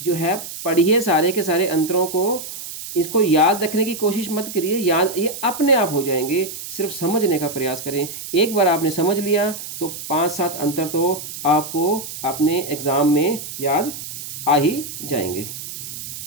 जो है पढ़िए सारे के सारे अंतरों को, इसको याद रखने की कोशिश मत करिए, याद ये अपने आप हो जाएंगे, सिर्फ समझने का प्रयास करें। एक बार आपने समझ लिया तो 5-7 अंतर तो आपको अपने एग्ज़ाम में याद आ ही जाएंगे।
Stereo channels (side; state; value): right; noise; hiss, 10 dB below the sound